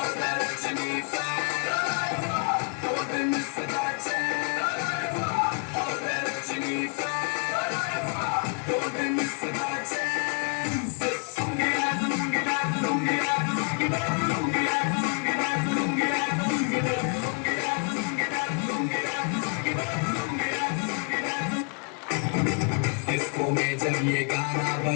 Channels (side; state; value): right; quieter; 36.6 dB